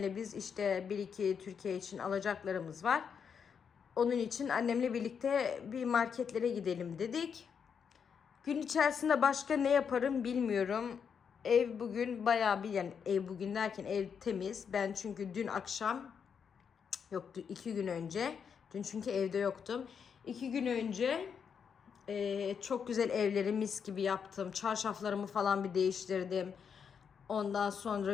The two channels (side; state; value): right; quieter; 6.9 dB